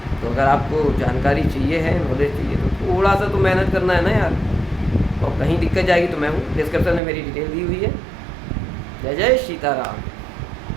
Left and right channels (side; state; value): left; drops out; at 7.0 s